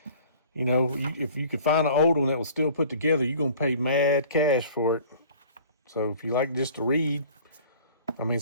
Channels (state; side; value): inverted; both; correlation -0.49